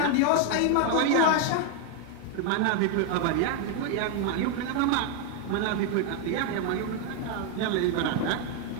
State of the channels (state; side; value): different; both; correlation 0.01